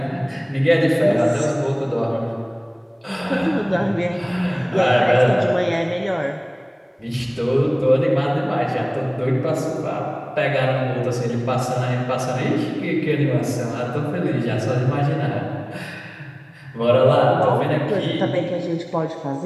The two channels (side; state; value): both; identical; correlation 1.00